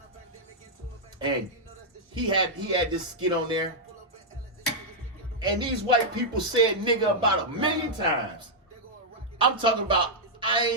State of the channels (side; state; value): both; normal; correlation -0.06